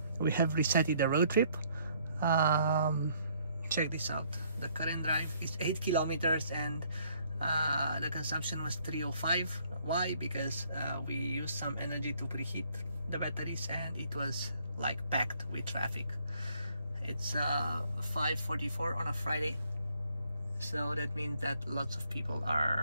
we have resetted the road trip. Check this out. The current drive is 8 kilometers and the consumption was 305. Why? Because we used some energy to preheat the batteries and it was like packed with traffic. It's 5:44 on a Friday, so that means that lots of people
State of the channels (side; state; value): both; inverted; correlation -0.66